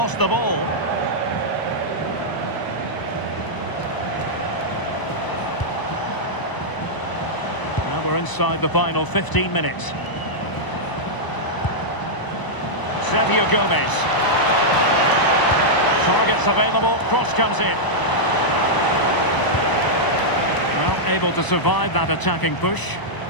the ball. Now we're inside the final 15 minutes. Sergio Gomez. Targets available, cross comes in. Well, able to survive that attacking push.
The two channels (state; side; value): late; right; 1.0 ms